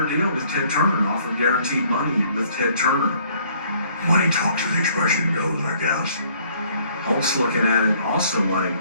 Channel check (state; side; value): inverted; both; correlation -0.61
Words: deal with Ted Turner, offered guaranteed money with Ted Turner. Money talks, as the expression goes, I guess. Hulk's looking at it also like,